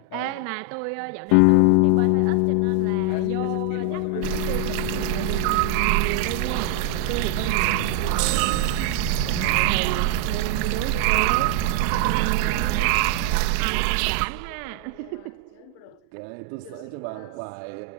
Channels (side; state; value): both; different; correlation 0.00